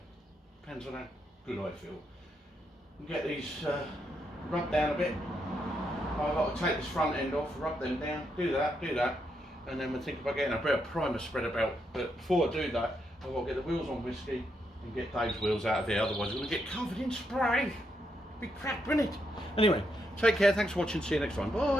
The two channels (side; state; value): both; normal; correlation 0.80